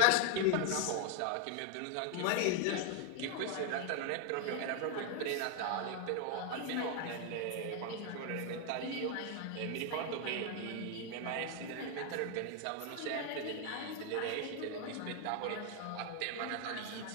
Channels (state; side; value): different; both; correlation 0.01